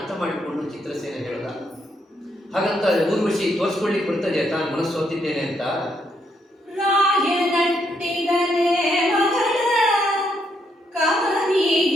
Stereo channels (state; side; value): normal; both; correlation 0.76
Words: ಮಾಡಿಕೊಂಡು ಚಿತ್ರಸೇನ ಹೇಳ್ದ. ಹಾಗಂತ ಊರ್ವಶಿ ತೋರಿಸ್ಕೊಳ್ಳಿಕ್ಕೆ ಬರ್ತದೆ ತಾನು ಮನಸ್ಸು ಹೊತ್ತಿದ್ದೇನೆ ಅಂತ. ರಾಯನಟ್ಟಿದನೆ ಮಗಳ